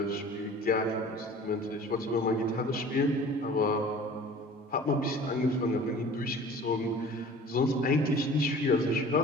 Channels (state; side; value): normal; both; correlation 0.44